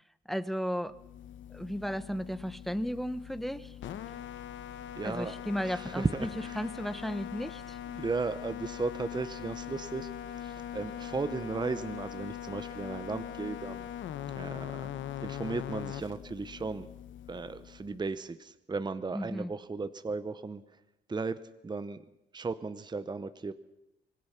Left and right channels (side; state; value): both; normal; correlation 0.73